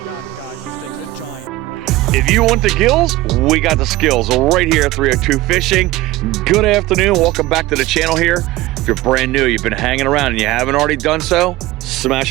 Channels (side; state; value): left; quieter; 18.0 dB